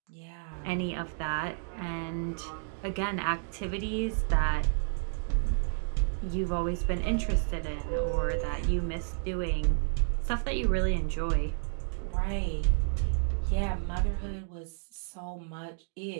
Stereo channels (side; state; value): left; silent; digital silence